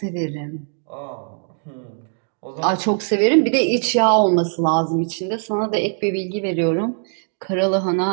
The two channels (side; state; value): left; silent; 60 dB below the other